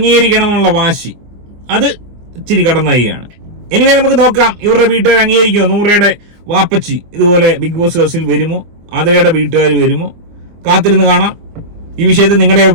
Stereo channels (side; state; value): left; late; 24 ms